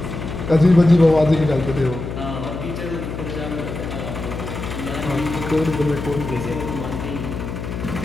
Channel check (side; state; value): left; noise; hum, 7 dB below the sound